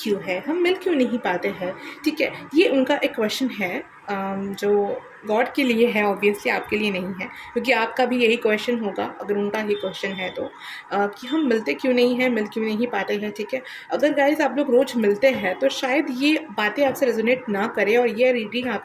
है, हम मिल क्यों नहीं पाते हैं, ठीक है। ये उनका एक क्वेश्चन है जो गॉड के लिए है, ऑब्वियसली आपके लिए नहीं है, क्योंकि आपका भी यही क्वेश्चन होगा अगर उनका ही क्वेश्चन है तो, कि हम मिलते क्यों नहीं हैं, मिल क्यों नहीं पाते हैं, ठीक है। अगर गाइस आप लोग रोज़ मिलते हैं तो शायद ये बातें आपसे रेजोनेट ना करें और ये रीडिंग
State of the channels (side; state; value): both; identical; correlation 1.00